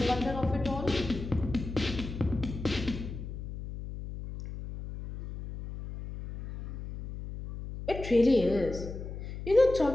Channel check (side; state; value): left; noise; hum, 9 dB below the sound